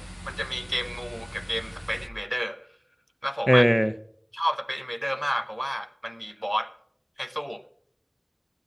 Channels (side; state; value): both; identical; correlation 1.00